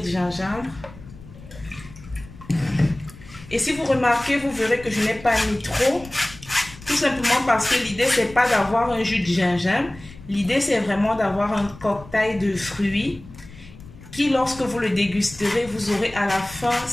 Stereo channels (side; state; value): left; noise; rumble, 19 dB below the sound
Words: gingembre. Et si vous remarquez, vous verrez que je n'ai pas mis trop. Tout simplement parce que l'idée, c'est pas d'avoir un jus de gingembre. L'idée, c'est vraiment d'avoir un cocktail de fruits qui, lorsque vous le dégusterez, vous aurez à la fin